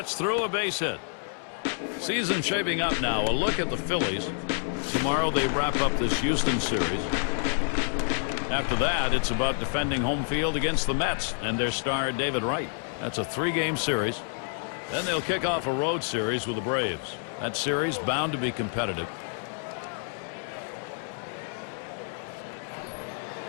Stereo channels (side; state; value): right; silent; 59 dB below the other